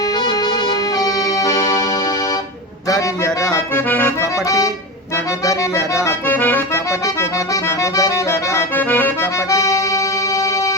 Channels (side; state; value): both; normal; correlation 0.22